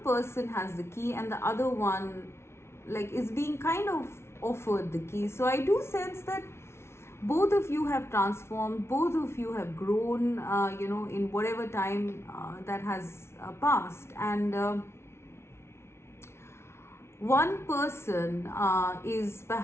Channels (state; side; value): late; right; 0.12 ms